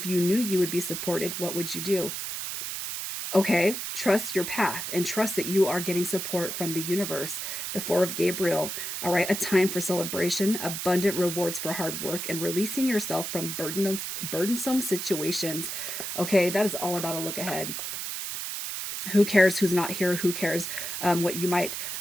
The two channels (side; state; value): right; noise; hiss, 5 dB below the sound